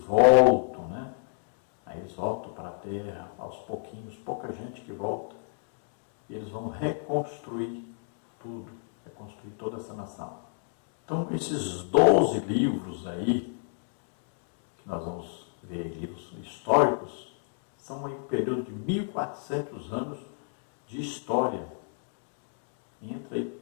né? Aí eles voltam para a terra, aos pouquinhos, pouca gente que volta, e eles vão reconstruir tudo, reconstruir toda essa nação. Então, esses 12 livros aí, que nós vamos ver, livros históricos, são um período de 1400 anos de história. Entra aí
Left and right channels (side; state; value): right; silent; digital silence